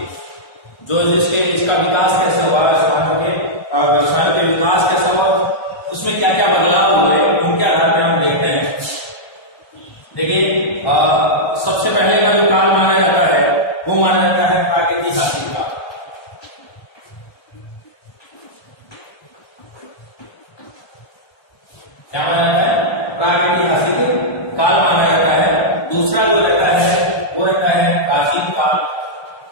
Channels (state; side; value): late; right; 1.3 ms